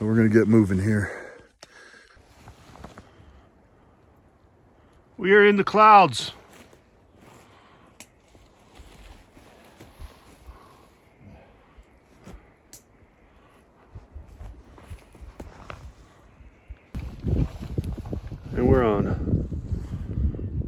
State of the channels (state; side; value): identical; both; correlation 1.00